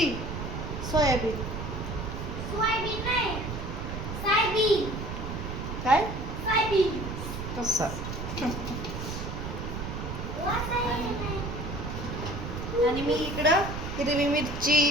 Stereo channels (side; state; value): right; noise; rumble, 6 dB below the sound